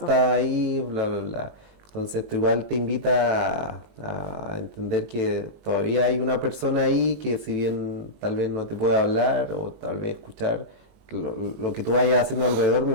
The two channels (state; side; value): late; left; 20 ms